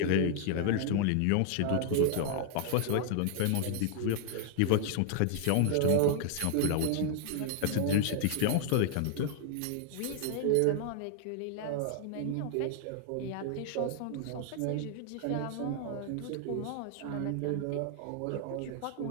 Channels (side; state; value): both; different; correlation 0.00